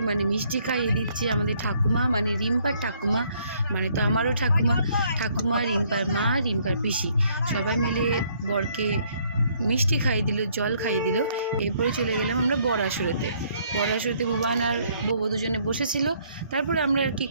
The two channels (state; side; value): inverted; both; correlation -0.66